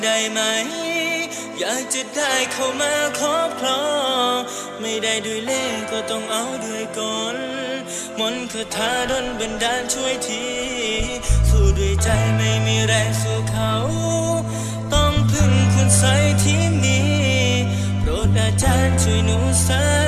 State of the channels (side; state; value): both; identical; correlation 1.00